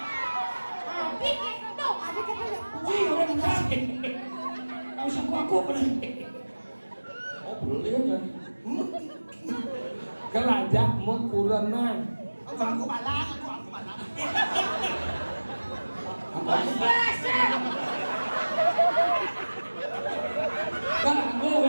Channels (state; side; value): inverted; both; correlation -1.00